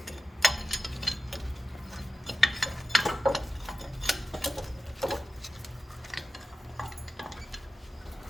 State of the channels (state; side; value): normal; both; correlation 0.93